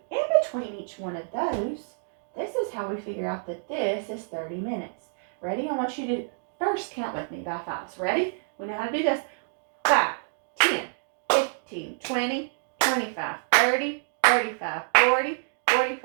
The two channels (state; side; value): silent; left; digital silence